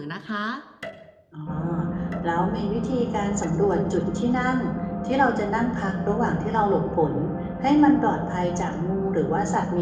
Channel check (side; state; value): both; identical; correlation 1.00